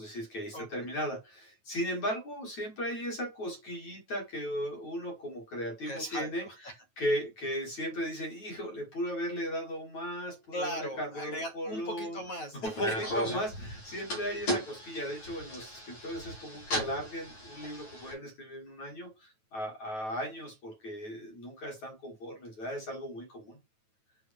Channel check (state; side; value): late; right; 9.2 ms